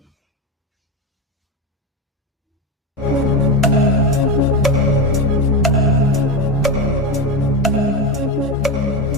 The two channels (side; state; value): both; normal; correlation 0.15